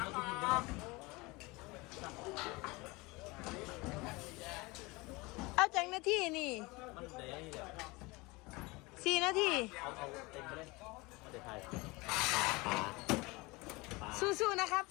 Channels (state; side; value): quieter; right; 24.1 dB